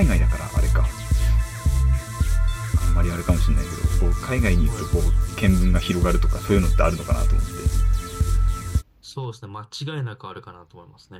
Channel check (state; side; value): identical; both; correlation 1.00